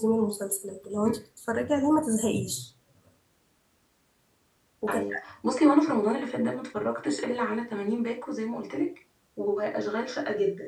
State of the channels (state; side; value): identical; both; correlation 1.00